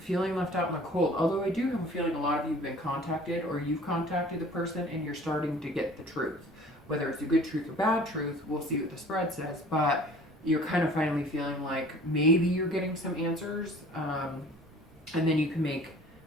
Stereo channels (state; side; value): noise; right; rumble, 27 dB below the sound